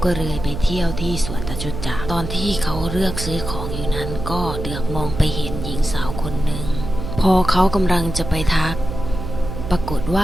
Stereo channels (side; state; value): right; noise; hum, 6 dB below the sound